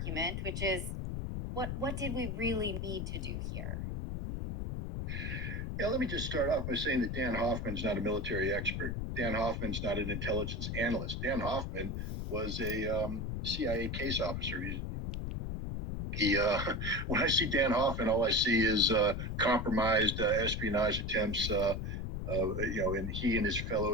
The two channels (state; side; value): noise; left; rumble, 3 dB below the sound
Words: which is, what did we really need to do here? Yeah, let me just start off by saying that Dan Hoffman's not a military expert. Dan Hoffman's not an intelligence analyst. Dan Hoffman was a CIA case officer. When I see Dan Hoffman, all I see is compromised espionage attempts. And he and his